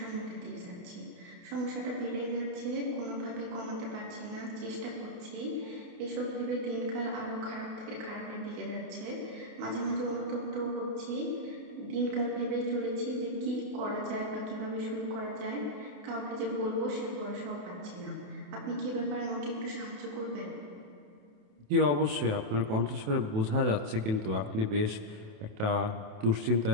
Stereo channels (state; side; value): late; left; 28 ms